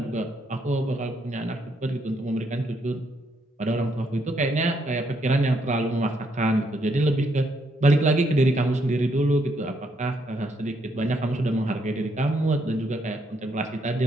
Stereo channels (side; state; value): both; normal; correlation 0.74